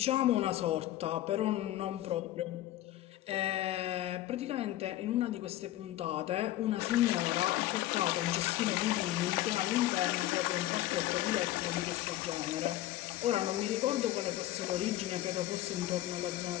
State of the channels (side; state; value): right; quieter; 14.8 dB